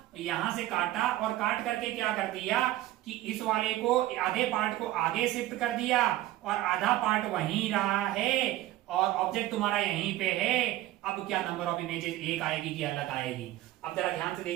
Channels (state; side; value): quieter; left; 15.3 dB